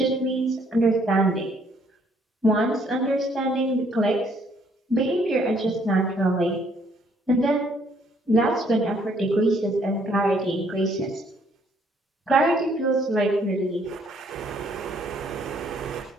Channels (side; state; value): both; normal; correlation 0.66